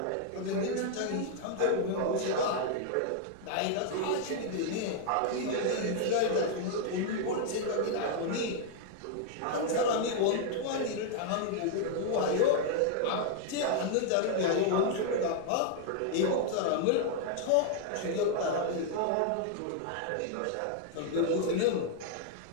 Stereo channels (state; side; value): different; both; correlation 0.00